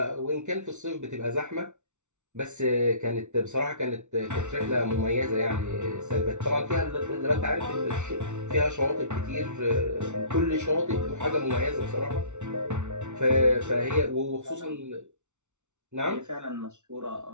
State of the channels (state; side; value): late; left; 0.83 ms